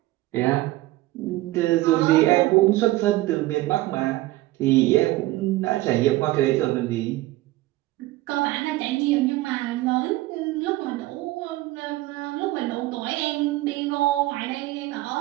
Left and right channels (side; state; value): left; quieter; 17.8 dB